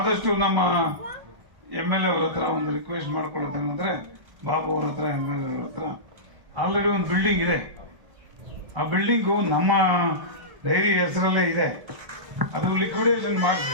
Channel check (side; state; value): left; late; 1.1 ms